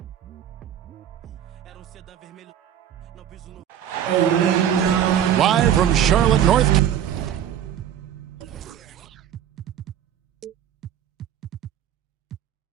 era sedã vermelho, não piso no. Live from Charlotte, North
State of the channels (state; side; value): quieter; left; 9.9 dB